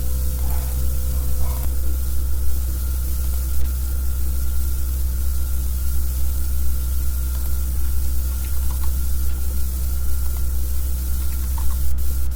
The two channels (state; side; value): identical; both; correlation 1.00